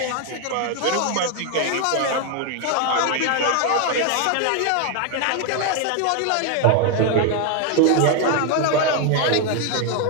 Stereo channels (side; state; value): both; different; correlation 0.01